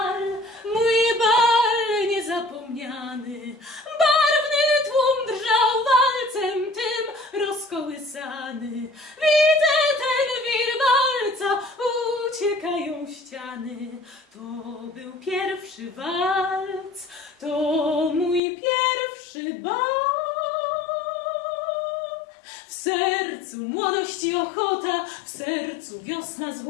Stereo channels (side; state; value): right; drops out; at 18.4 s